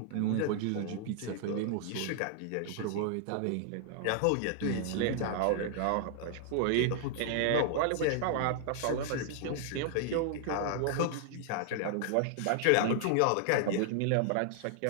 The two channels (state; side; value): different; both; correlation 0.00